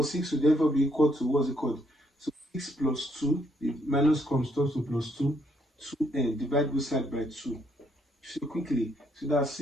6 will therefore be equal to, what's it called? So 6 plus 2, the minus comes to plus 2, 2N, divide both sides by 2. So quickly, so that's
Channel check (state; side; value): normal; both; correlation 0.71